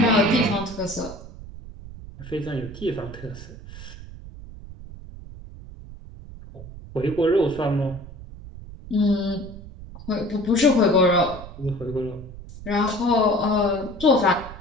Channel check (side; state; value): right; noise; rumble, 15 dB below the sound